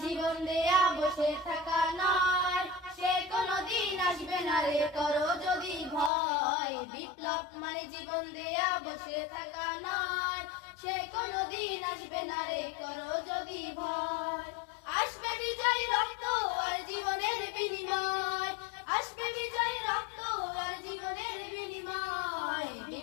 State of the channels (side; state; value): right; drops out; at 6.1 s